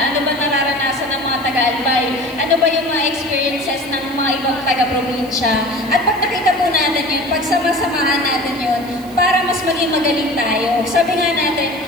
Ano ba nararanasan ng mga taga-Albay? Ano ba yung mga experiences ng mga ibang taga-probinsya? At pag nakita po natin yun, pagsama-samahan natin yun, para mas maging magaling tayo. Sabi nga natin,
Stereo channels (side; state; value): right; noise; hiss, 22 dB below the sound